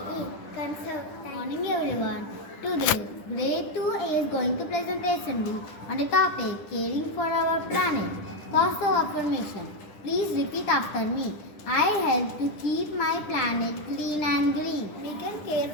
Conserve. Good morning everyone. Today, Grade IIA is going to presentation on a topic caring for our planet. Positive affirmation. Please repeat after me. I help to keep my planet clean and green. We can care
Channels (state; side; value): late; right; 10 ms